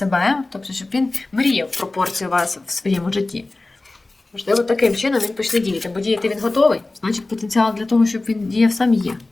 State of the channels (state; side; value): quieter; right; 3.1 dB